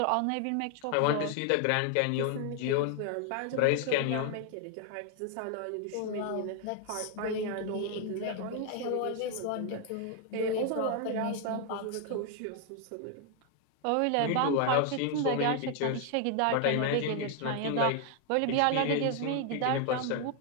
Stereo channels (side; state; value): both; different; correlation 0.00